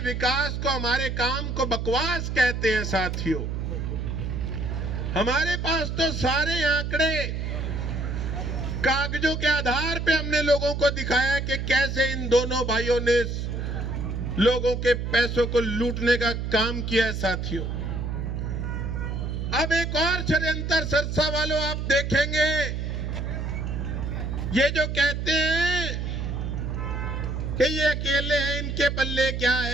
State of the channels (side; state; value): right; noise; hum, 3 dB below the sound